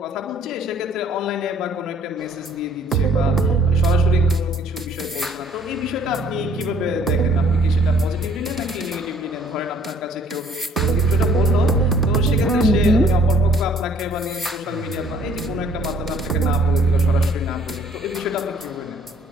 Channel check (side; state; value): both; normal; correlation 0.58